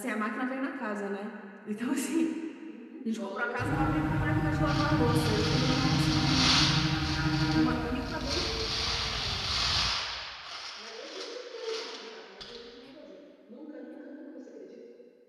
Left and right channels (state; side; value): identical; both; correlation 1.00